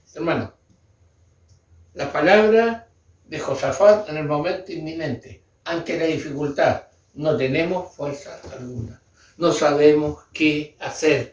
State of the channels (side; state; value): both; identical; correlation 1.00